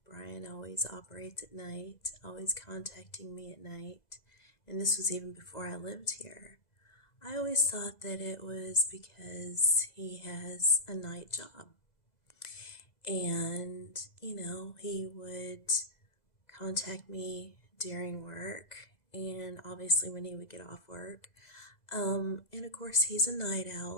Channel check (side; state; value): right; late; 2.0 ms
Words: Brian always operates at night, always contacting me at night, and this was even before I lived here, I always thought that it was because he has a night job. And, he would contact me during work and obviously when he would get off work. And of course, he's a night